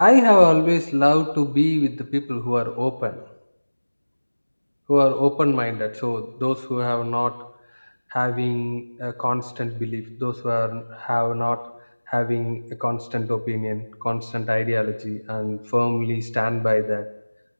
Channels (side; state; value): both; inverted; correlation -1.00